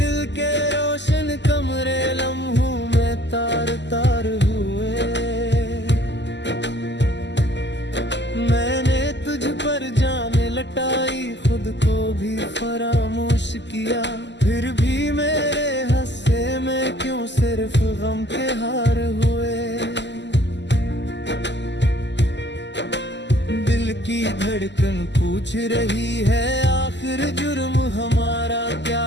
के रोशन कमरे लम्हों में तार तार हुए। मैंने तुझ पर जान लटाई, खुद को भी फरामोश किया। फिर भी मेरे हंसे में क्यों सिर्फ गम के हार हुए। दिल की धड़कन पूछ रही है आखिर जुर्म हमारा क्या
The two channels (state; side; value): late; right; 0.51 ms